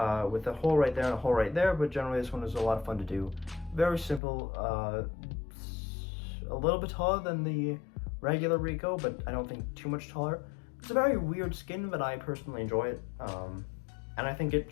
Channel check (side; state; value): right; drops out; at 4.2 s